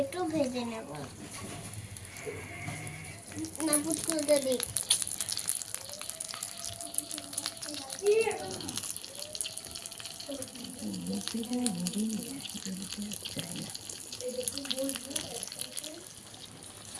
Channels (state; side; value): identical; both; correlation 1.00